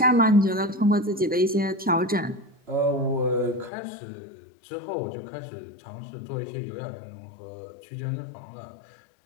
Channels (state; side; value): drops out; right; at 3.7 s